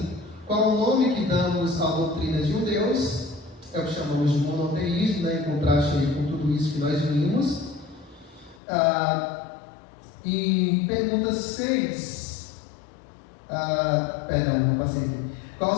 Qual o nome que damos à doutrina de um Deus? É o que chamamos de monoteísmo, em contraste com tudo isso que nós vimos. E pergunta 6. Perdão, passei aqui. Qual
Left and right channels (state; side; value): drops out; right; at 8.6 s